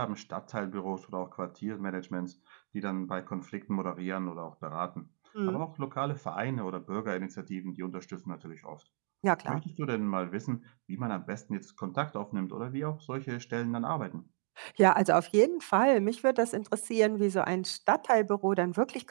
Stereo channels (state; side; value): silent; left; digital silence